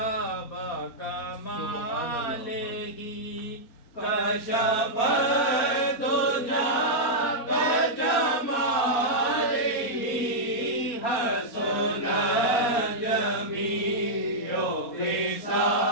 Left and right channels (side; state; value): right; late; 4.3 ms